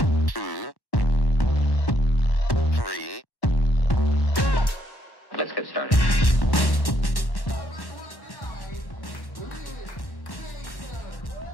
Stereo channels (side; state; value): right; late; 1.1 ms